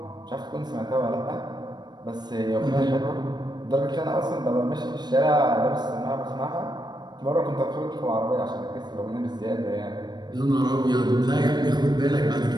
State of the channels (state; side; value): late; left; 0.21 ms